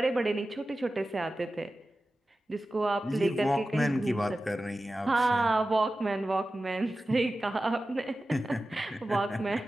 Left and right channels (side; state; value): both; normal; correlation 0.94